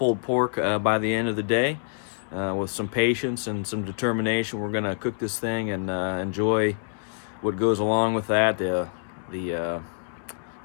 pork by the end of the day. With some patience and some determination, we're going to cook this thing and enjoy what goes along with that, the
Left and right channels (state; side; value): silent; right; digital silence